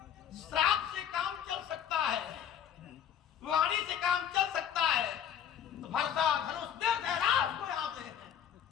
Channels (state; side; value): quieter; right; 9.1 dB